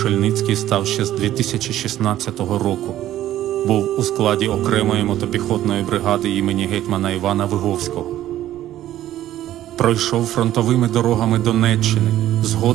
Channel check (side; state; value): left; quieter; 13.1 dB